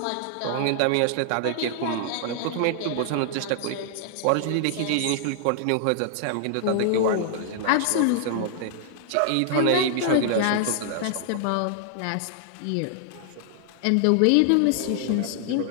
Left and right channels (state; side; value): different; both; correlation -0.01